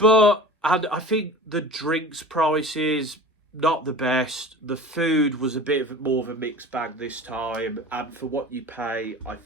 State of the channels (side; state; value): both; normal; correlation 0.38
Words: And I think the drinks prices, not the best. The food was a bit more of a mixed bag this time, and for what you pay, I